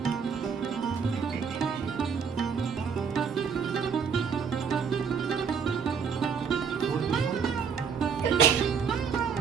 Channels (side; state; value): left; quieter; 6.5 dB